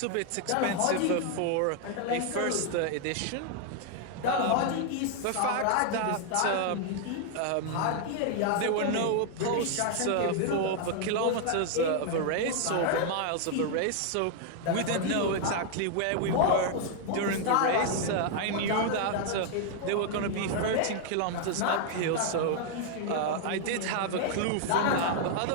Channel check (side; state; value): both; different; correlation 0.00